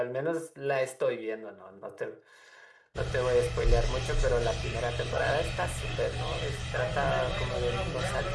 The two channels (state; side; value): identical; both; correlation 1.00